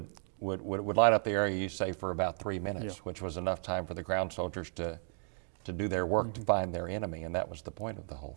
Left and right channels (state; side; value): silent; left; 55 dB below the other